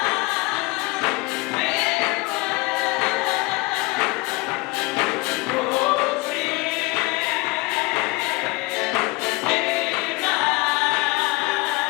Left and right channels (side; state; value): right; quieter; 24.5 dB